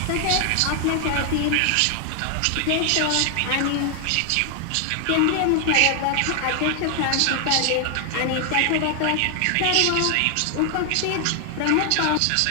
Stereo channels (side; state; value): both; different; correlation 0.00